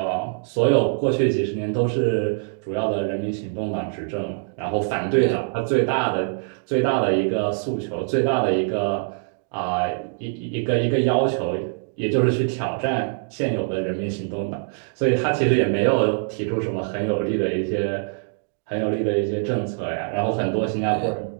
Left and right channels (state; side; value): silent; left; digital silence